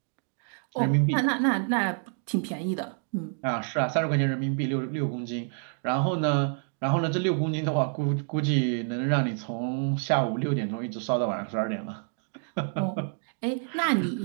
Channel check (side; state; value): left; silent; 59 dB below the other